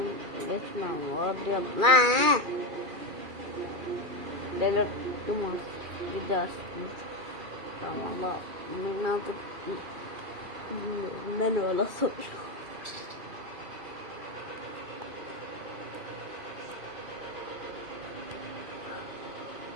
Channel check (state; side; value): late; left; 2.3 ms